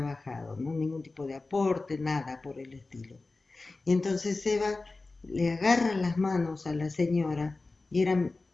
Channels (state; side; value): quieter; right; 3.5 dB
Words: ¿no? Ningún tipo de aporte, nada por el estilo. Y entonces Eva le agarra las manos a la señora y eran